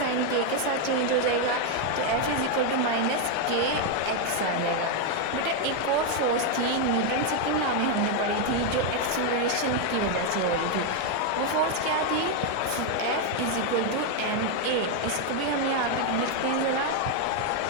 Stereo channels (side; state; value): both; different; correlation 0.01